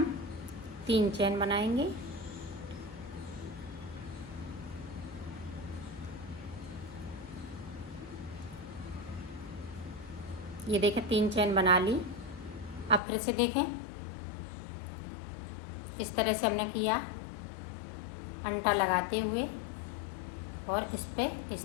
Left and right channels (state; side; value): drops out; right; at 13.0 s